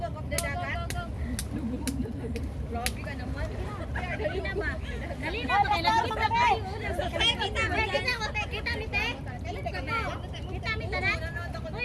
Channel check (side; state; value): both; identical; correlation 1.00